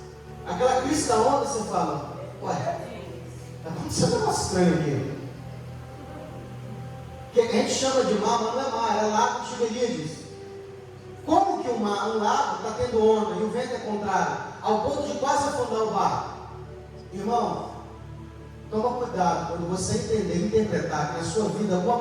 aquela crista da onda, você fala: ué, está acontecendo um negócio estranho aqui. Que a gente chama de mar, mas não é mar, é lago de Tiberíades. Como que um lago está tendo onda e o vento é contrário, ao ponto de quase afundar o barco? Irmão, toma cuidado quando você entender e interpretar que na sua vida alguma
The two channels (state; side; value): identical; both; correlation 1.00